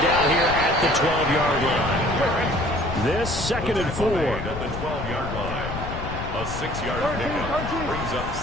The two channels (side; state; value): left; noise; rumble, 7 dB below the sound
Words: down here at the 12-yard line. This 2nd and 4. At the 12-yard line. A 6-yard pickup brings up